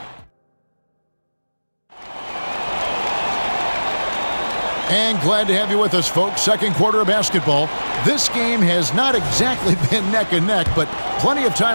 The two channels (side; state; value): both; inverted; correlation -1.00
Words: And glad to have you with us, folks. Second quarter of basketball. This game has not exactly been neck and neck, but plenty of